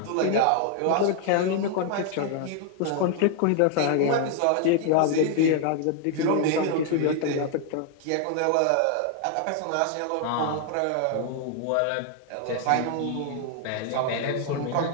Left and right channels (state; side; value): different; both; correlation 0.00